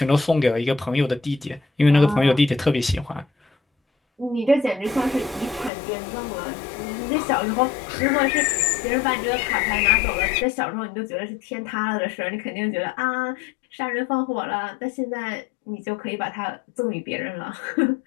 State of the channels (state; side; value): drops out; right; at 5.7 s